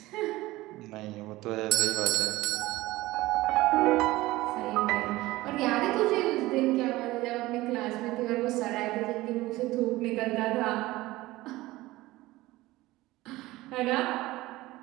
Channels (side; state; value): left; quieter; 18.5 dB